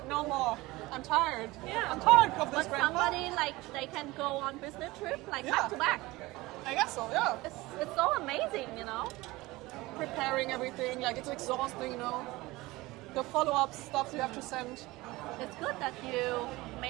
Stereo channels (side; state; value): left; quieter; 20.4 dB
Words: No more. I'm tired. Yeah. I'm tired of this. But somebody, like, they can go on business trip, like, back to back. I guess so, yeah. It's so amazing, you know? Preparing everything, like, it's exhausting, you know? The follow-up stuff you have to send. It's good that you